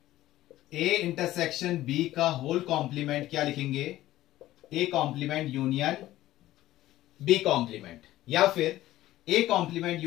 ए इंटरसेक्शन बी का होल कॉम्प्लीमेंट क्या लिखेंगे, A complement union B complement, या फिर A complement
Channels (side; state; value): right; quieter; 15.2 dB